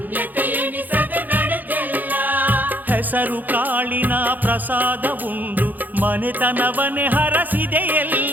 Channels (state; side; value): late; left; 0.084 ms